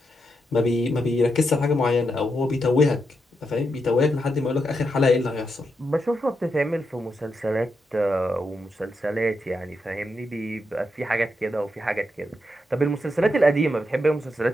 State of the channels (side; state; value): both; normal; correlation 0.84